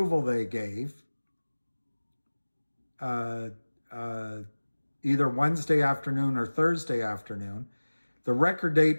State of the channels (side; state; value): both; inverted; correlation -1.00